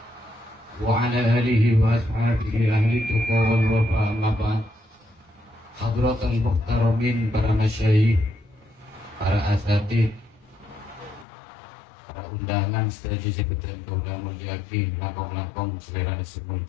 wa ala alihi wa ashabihi ahli tuqa wal wafa, amma ba'd. Hadratul muhtaramin, para masyayikh, para asatid, para undangan sedaja sebutan kaulan muljaki, langkong-langkong selera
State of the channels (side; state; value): right; drops out; at 11.2 s